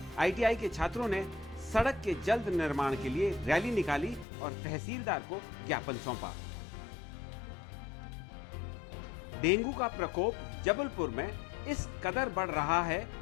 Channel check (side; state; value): right; drops out; at 4.2 s